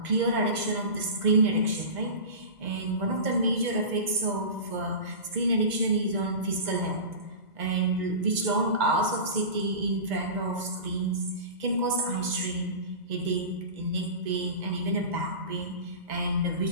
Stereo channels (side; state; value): left; late; 2.0 ms